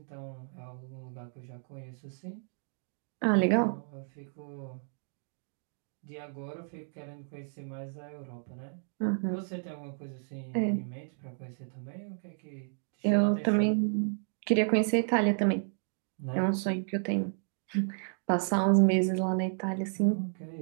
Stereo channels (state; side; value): silent; left; digital silence